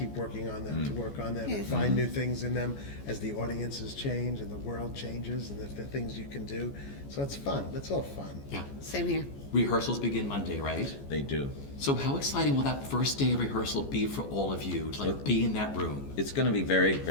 working on them, to work on them and find new things in them as the audiences change and the world changes and the things you can do. So it's fun. It's all fun. Yeah. Same here. Rehearsals begin Monday, right? They do. So how exciting will that first day of rehearsal be for all of you to be in that room? It's going to be very,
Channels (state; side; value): late; right; 14 ms